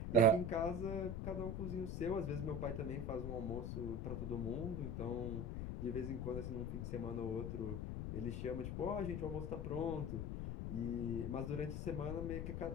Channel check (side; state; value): left; noise; rumble, 3 dB below the sound